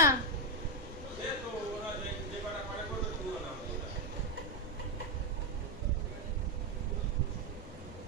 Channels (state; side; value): noise; left; rumble, 13 dB below the sound